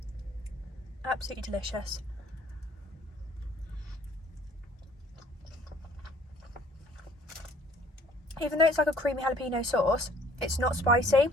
Absolutely delicious. Even though it's like a creamy jalapeno sauce, it's not spicy.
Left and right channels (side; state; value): both; normal; correlation 0.57